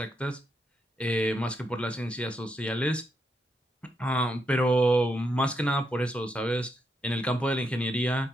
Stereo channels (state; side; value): normal; both; correlation 0.80